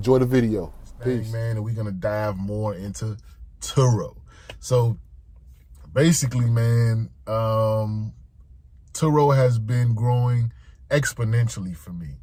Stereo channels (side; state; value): both; identical; correlation 1.00